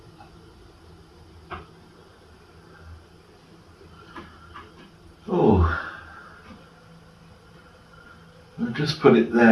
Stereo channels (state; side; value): identical; both; correlation 1.00